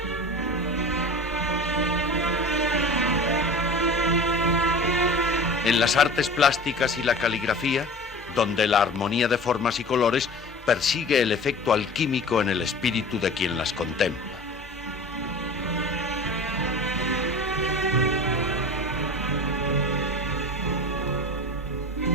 En las artes plásticas y la caligrafía, donde la armonía de formas y colores persigue el efecto alquímico en el espíritu de quien las contempla.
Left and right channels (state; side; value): normal; both; correlation 0.37